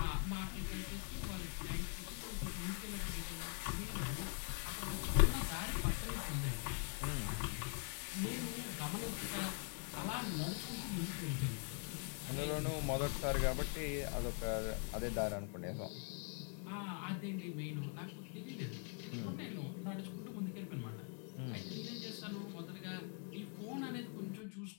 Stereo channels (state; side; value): quieter; right; 38.5 dB